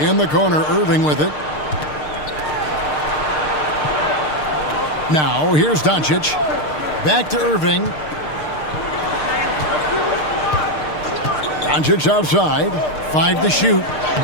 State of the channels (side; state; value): right; late; 6.6 ms